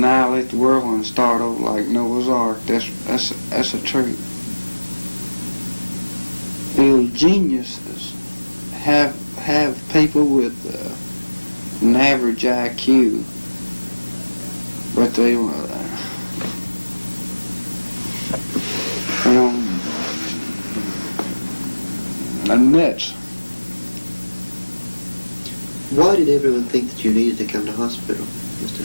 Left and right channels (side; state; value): both; inverted; correlation -1.00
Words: the world and start over like Noah's Ark. That's a truth. The geniuses have people with an average IQ, but they are nuts. Why did everyone think that you needed to come to hospital, Mr.